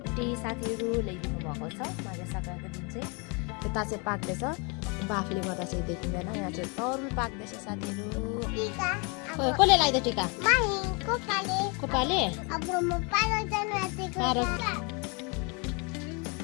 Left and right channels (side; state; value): right; quieter; 32.1 dB